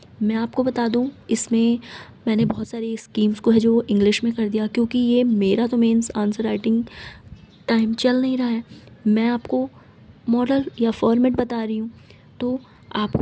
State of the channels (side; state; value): both; identical; correlation 1.00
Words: मैं आपको बता दूं, इसमें मैंने बहुत सारी स्कीम्स को है जो इंग्लिश में कर दिया, क्योंकि ये मेरा तो मेंस आंसर राइटिंग टाइम चल नहीं रहा है, मैं आपको मॉडल या फॉर्मेट बता रही हूँ। तो आपको